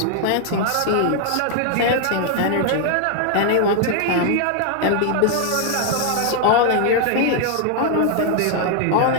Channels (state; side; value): different; both; correlation 0.00